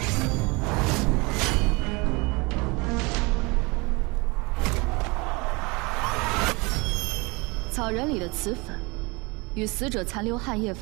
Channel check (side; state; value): left; quieter; 26.8 dB